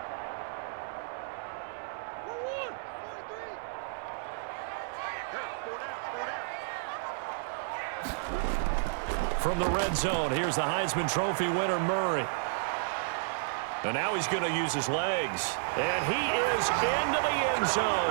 From the red zone, here's the Heisman Trophy winner, Murray. And now he's going to use his legs. And he is into the end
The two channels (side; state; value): left; silent; 57 dB below the other